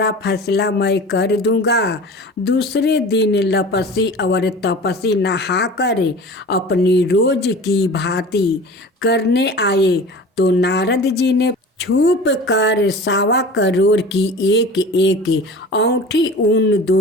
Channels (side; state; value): both; normal; correlation 0.38